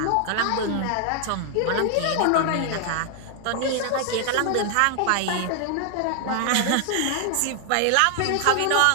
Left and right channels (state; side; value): different; both; correlation 0.00